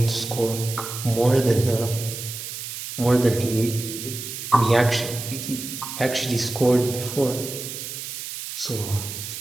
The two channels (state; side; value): noise; right; hiss, 8 dB below the sound